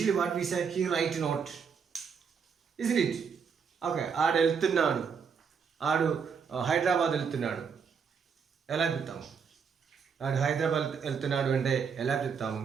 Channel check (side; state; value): left; quieter; 6.3 dB